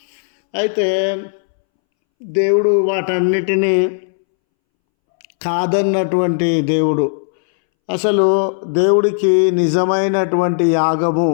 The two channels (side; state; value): right; silent; 67 dB below the other